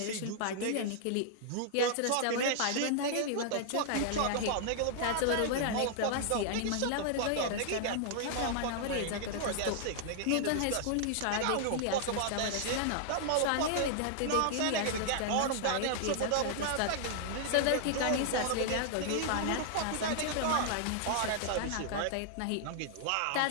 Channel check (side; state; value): both; different; correlation -0.01